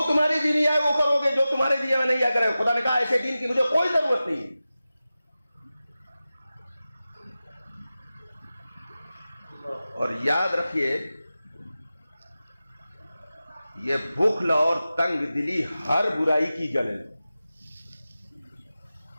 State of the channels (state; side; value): inverted; both; correlation -0.95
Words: تمہاری دین آئے وہ کرو گے، جو تمہارے دین میں نہیں آ کرے۔ خدا نے کہا ایسے دین کی مجھے کوئی ضرورت نہیں ہے۔ اور یاد رکھیے یہ بخل اور تنگ دلی ہر برائی کی جڑ ہے۔